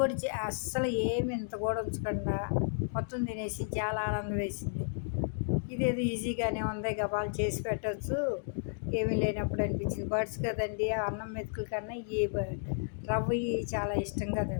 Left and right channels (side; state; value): right; silent; digital silence